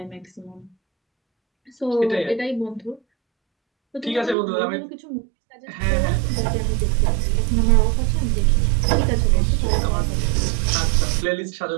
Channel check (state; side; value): drops out; left; at 4.4 s